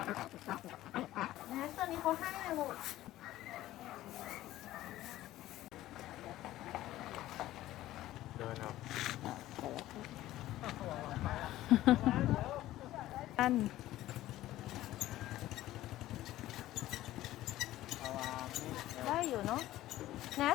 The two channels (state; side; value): quieter; right; 15.1 dB